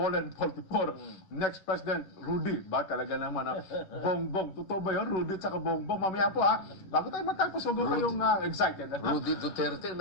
44. Next President, Rudy. Ba talaga naman Bongbong. Totoo ba yun? Rudy at saka Bongbong. Mamaya po bago tayo matapos, huwag kayong excited. Rudy Duterte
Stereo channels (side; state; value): right; late; 10 ms